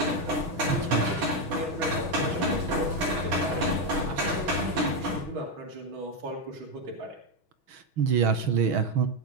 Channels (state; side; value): late; left; 6.3 ms